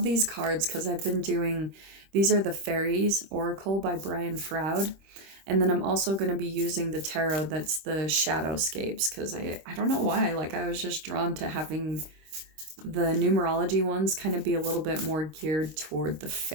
these cards because I've been doing, these are the Faeries Oracle by Brian Froud. And then I'm also going to be using the tarot that's the Shadowscapes, because I don't know why, like I was just drawn to having the numerology ones kind of be a little bit more geared toward the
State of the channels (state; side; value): late; left; 26 ms